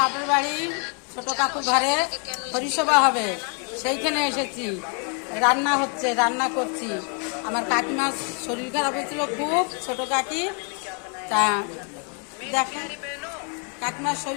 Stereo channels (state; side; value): quieter; right; 39.6 dB